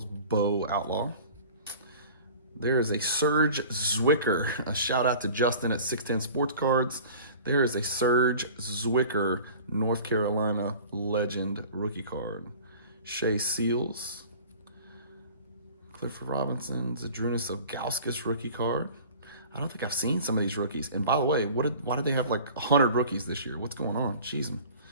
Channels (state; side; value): inverted; both; correlation -0.44